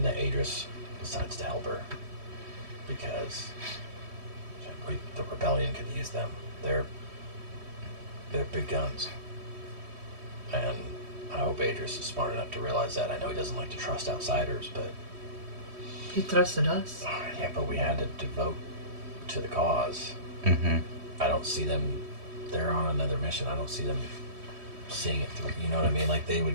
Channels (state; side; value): late; left; 3.1 ms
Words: that Adris decides to help her, because the rebellion could use them. They're big guns, and I hope Adris is smart enough to realize that. I know he doesn't like to trust outsiders, but He trusted us. yeah, but we had to devote to the cause. Mm-hmm. I don't see them. They're on another mission. I don't see them seeing it through. You know what I mean? Like, they